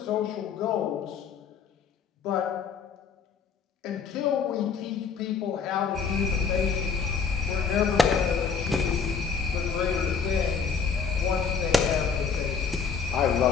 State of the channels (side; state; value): right; quieter; 5.9 dB